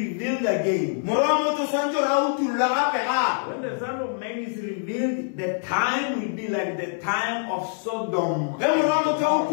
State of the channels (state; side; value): silent; right; 62 dB below the other